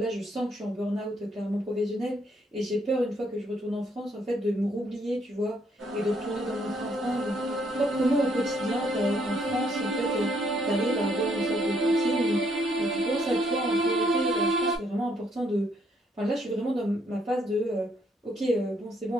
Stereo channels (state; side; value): normal; both; correlation 0.70